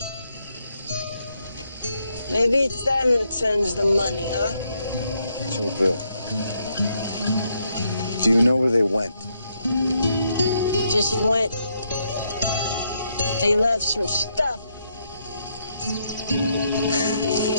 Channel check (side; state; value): both; inverted; correlation -0.76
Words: Maybe it's them that sends the money, huh? Joe Bill. Do you know where they went? Just went. They left some stuff.